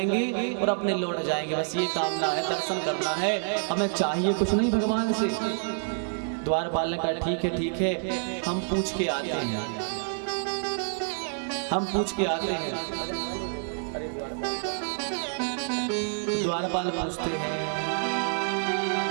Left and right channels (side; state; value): left; silent; 59 dB below the other